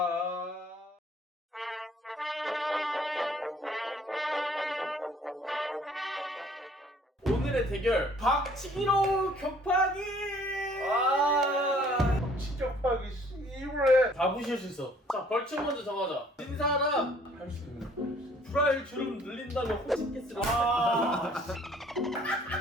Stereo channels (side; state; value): both; normal; correlation 0.58